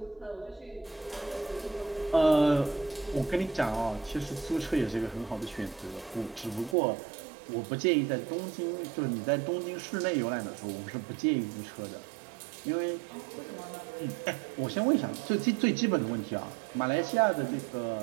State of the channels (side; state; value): left; drops out; at 6.8 s